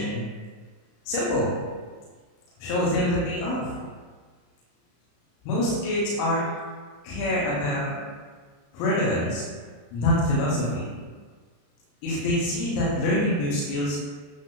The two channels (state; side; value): late; right; 34 ms